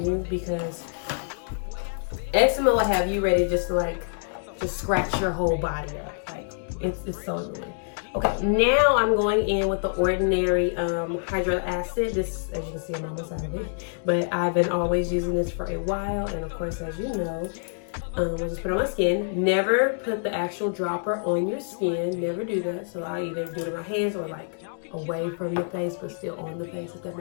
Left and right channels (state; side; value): silent; right; digital silence